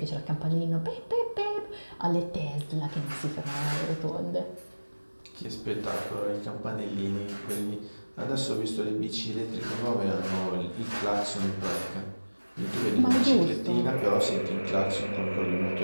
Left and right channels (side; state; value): both; inverted; correlation -1.00